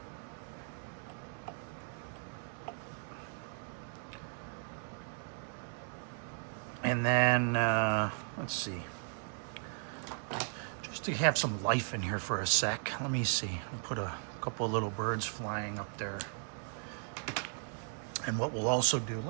And then, let's see, just to have some life in here for a sec, let me see, I'll put a couple of little birds flying up there. And what we'll also do,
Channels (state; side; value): silent; left; 53 dB below the other